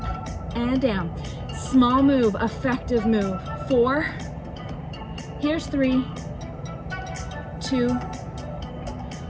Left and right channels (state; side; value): identical; both; correlation 1.00